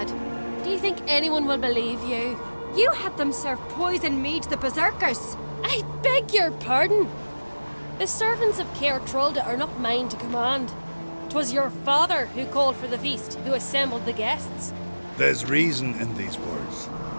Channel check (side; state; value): both; inverted; correlation -1.00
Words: Do you think anyone will believe you? You had them serve poison mead to the berserkers. I beg your pardon. The servants of Caer Trolda are not mine to command. 'Twas your father who called for the feast, who assembled the guests. There's reason in these words.